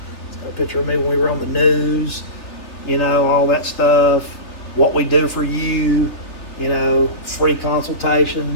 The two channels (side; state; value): right; late; 3.5 ms